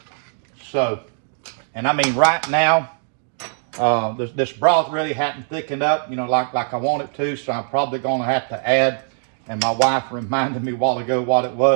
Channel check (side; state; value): left; silent; digital silence